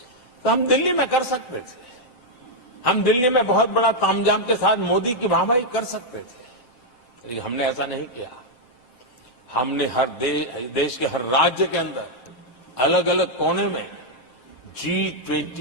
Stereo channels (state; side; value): late; right; 7.7 ms